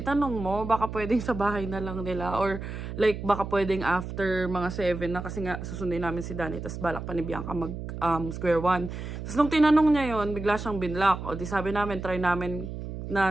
mo, baka pwedeng sa bahay na lang nila. Or like, baka pwedeng after mga 7 na. Kasi nga, susundin namin si Danny. Tapos balak pa ni Bianca mag square one. Tapos nung tinanong niya yon bigla siyang binlock. O di sabi namin, try namin na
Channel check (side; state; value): right; noise; hum, 8 dB below the sound